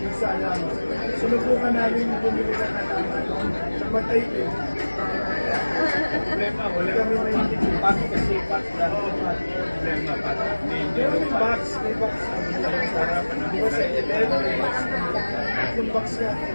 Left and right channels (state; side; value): inverted; both; correlation -1.00